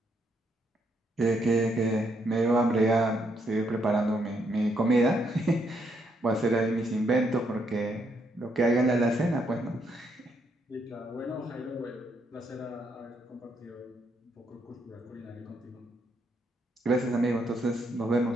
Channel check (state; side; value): normal; both; correlation 0.75